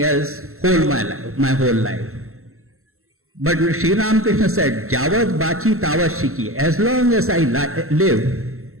else my whole life. But Sri Ramakrishna said, Javat Bachi Tavat Shiki. As long as I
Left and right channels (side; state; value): left; late; 0.63 ms